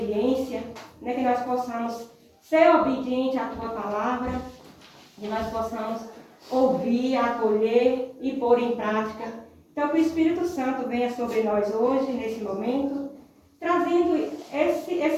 né, que nós possamos ser obedientes à Tua palavra, que nós possamos ouvir, acolher e pôr em prática. Então, que o Espírito Santo venha sobre nós hoje, nesse momento, trazendo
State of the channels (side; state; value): both; identical; correlation 1.00